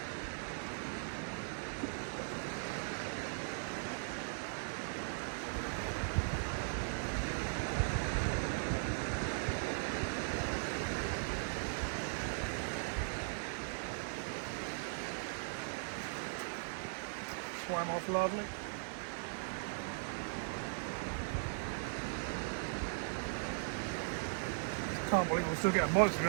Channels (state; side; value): silent; left; 52 dB below the other